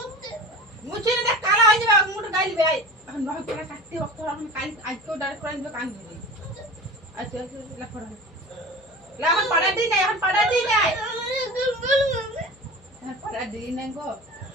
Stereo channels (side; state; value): left; noise; hum, 28 dB below the sound